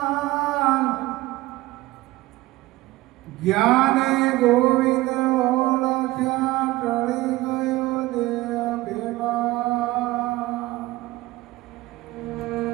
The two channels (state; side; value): quieter; left; 18.6 dB